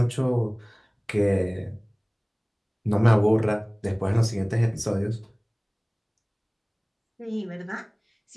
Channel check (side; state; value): both; identical; correlation 1.00